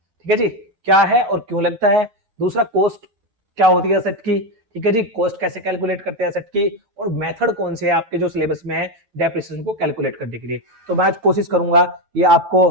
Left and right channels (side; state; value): left; late; 9.3 ms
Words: है जी, क्या है और क्यों लगता है। दूसरा, कॉस्ट क्या होती है एसेट की। ठीक है जी, कॉस्ट कैसे कैलकुलेट करते हैं एसेट की, और मेथड कौन से है आपके जो सिलेबस में है डेप्रिसिएशन को कैलकुलेट करने के लिए। तो मैं आज कोशिश करूंगा ये आपको